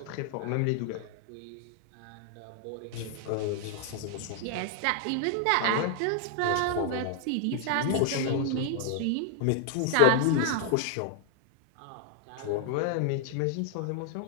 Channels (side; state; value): both; different; correlation 0.00